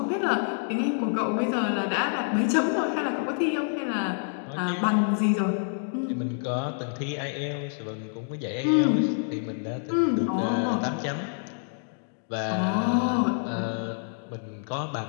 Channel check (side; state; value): right; silent; digital silence